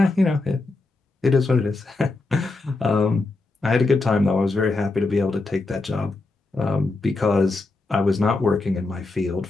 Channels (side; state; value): right; quieter; 3.3 dB